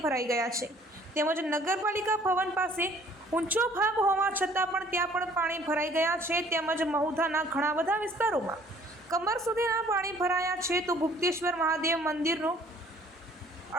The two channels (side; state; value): both; normal; correlation 0.56